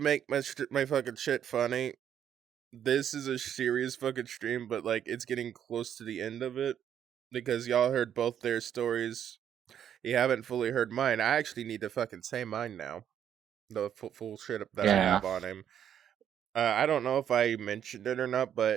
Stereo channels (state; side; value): quieter; left; 9.4 dB